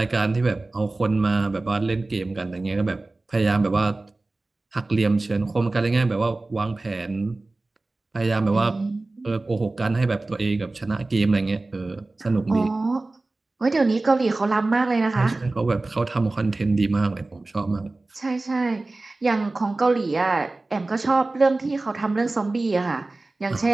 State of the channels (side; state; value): left; quieter; 3.1 dB